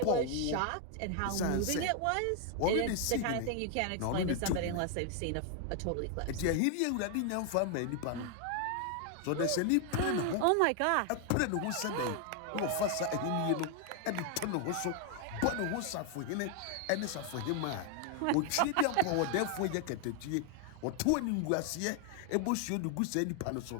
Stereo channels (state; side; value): different; both; correlation 0.00